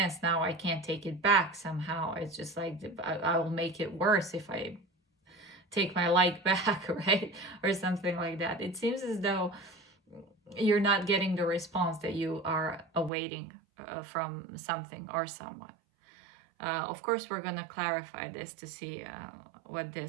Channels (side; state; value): left; drops out; at 13.1 s